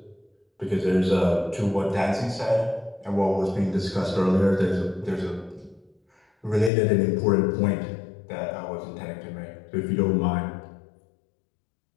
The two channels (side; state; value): right; drops out; at 6.7 s